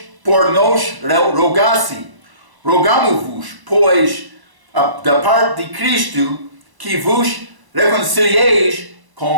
por nós rogasse. Rogamo-vos, pois, da parte de Cristo, que vos reconcilieis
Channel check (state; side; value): late; left; 1.0 ms